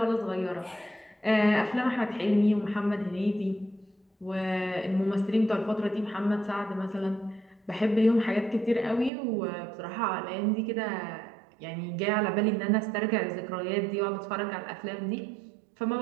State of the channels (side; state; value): left; drops out; at 9.1 s